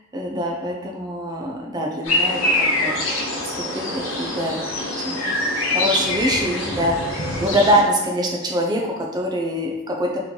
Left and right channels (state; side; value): normal; both; correlation 0.17